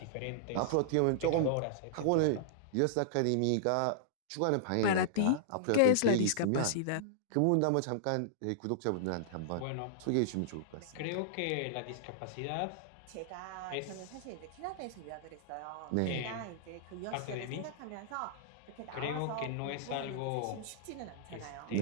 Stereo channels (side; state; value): both; different; correlation -0.01